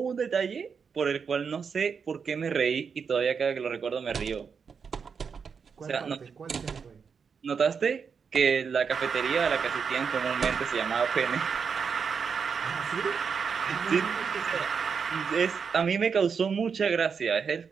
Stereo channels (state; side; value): quieter; left; 6.1 dB